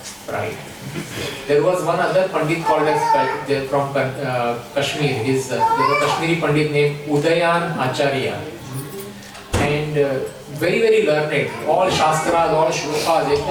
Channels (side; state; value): both; identical; correlation 1.00